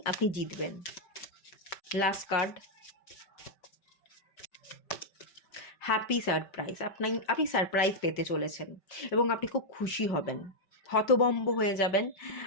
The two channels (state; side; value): late; right; 5.2 ms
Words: আপনি জিতবেন। Last card, happy surprise. আপনি সারপ্রাইজ পেতে চলেছেন এবং আপনি খুব খুশি হবেন, হতভম্ব হয়ে যাবেন,